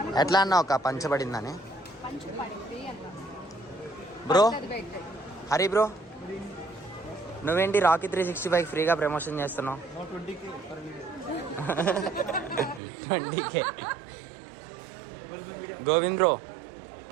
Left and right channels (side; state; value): left; drops out; at 12.8 s